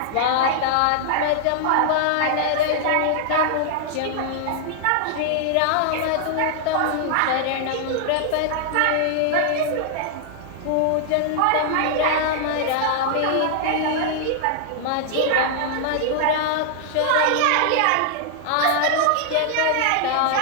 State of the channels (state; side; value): different; both; correlation -0.01